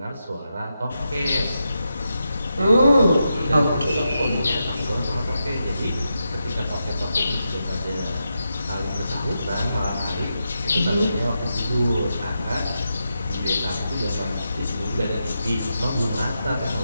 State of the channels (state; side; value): inverted; both; correlation -0.86